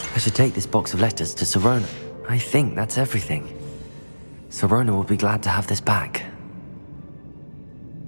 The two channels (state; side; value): inverted; both; correlation -1.00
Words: I should take this box of letters to Sirona. I think that's everything. Sirona will be glad to have this back.